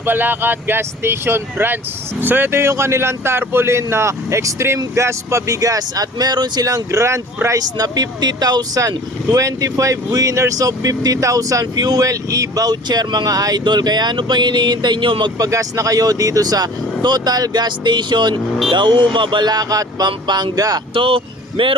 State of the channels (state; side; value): normal; both; correlation 0.45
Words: Balacat Gas Station Branch. So ito yung kanilang tarpaulin na extreme gas pabigas at meron silang grand prize na 50,000, 25 winners of 50,000 fuel e-voucher mga idol. Kaya ano pang hinihintay nyo? Magpagas na kayo dito sa Total Gas Station Dauma, Balacat, Pampanga. So